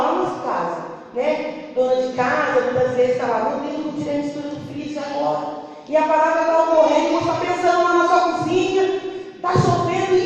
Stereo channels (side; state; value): both; identical; correlation 1.00